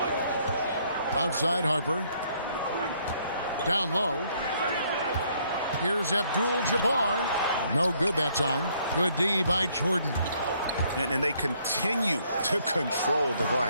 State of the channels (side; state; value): both; inverted; correlation -0.67